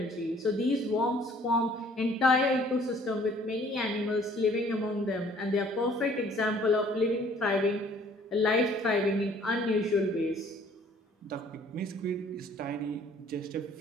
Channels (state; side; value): normal; both; correlation 0.57